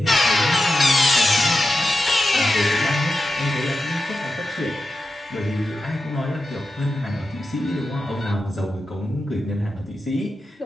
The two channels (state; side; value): normal; both; correlation 0.90